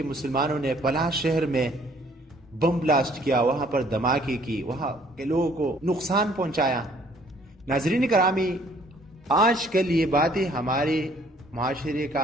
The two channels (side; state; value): both; normal; correlation 0.60